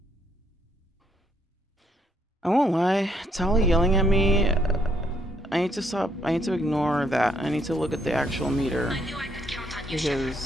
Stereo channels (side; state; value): both; normal; correlation 0.72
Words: I won't lie, Tali yelling at me, I need to stop, I need to ignore that. I need to look at the actual meter.